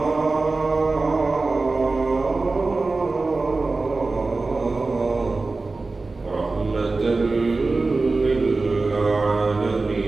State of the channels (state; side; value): quieter; left; 3.6 dB